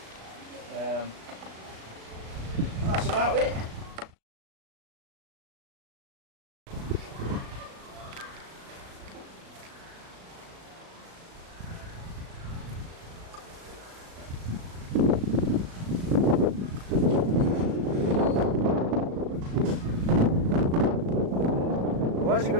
And that's about it. Why's it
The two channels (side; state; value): left; late; 37 ms